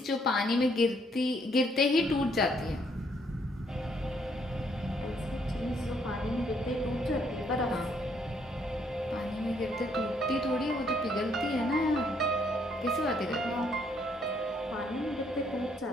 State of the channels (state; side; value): normal; both; correlation 0.70